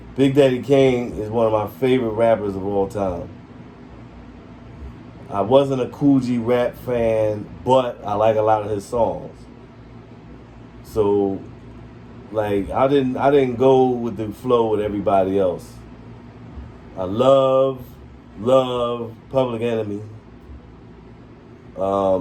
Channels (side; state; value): both; identical; correlation 1.00